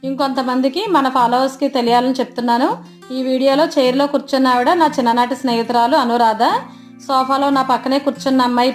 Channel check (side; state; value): both; identical; correlation 1.00